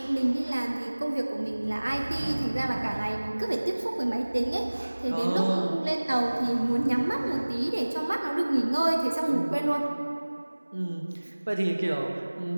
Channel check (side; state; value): both; inverted; correlation -1.00